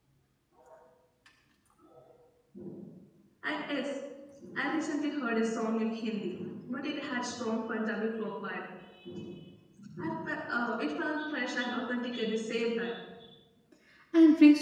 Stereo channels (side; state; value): both; identical; correlation 1.00